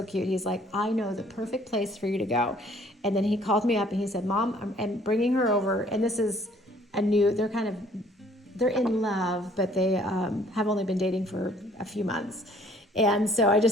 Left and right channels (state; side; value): normal; both; correlation 0.59